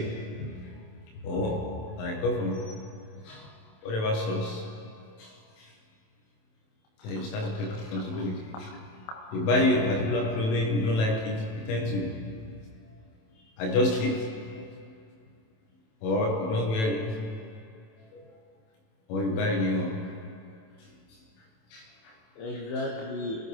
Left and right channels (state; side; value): late; right; 27 ms